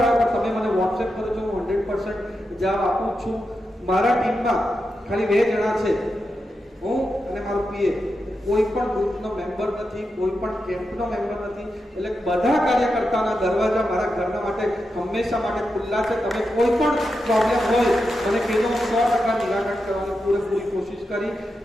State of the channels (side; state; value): both; normal; correlation 0.88